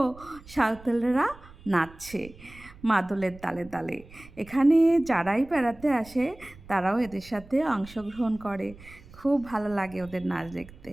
সাঁওতালরা নাচছে মাদলের তালে তালে। এখানে যারাই বেড়াতে আসে তারাও এদের সাথে অংশগ্রহণ করে, খুব ভালো লাগে ওদের নাচ দেখতে।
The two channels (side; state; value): right; noise; rumble, 21 dB below the sound